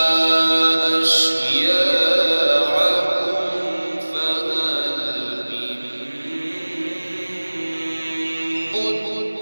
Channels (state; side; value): inverted; both; correlation -1.00